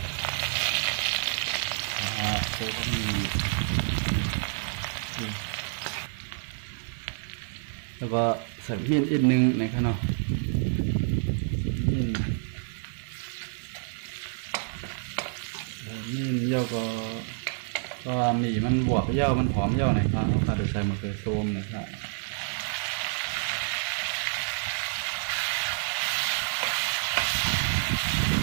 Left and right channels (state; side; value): silent; left; digital silence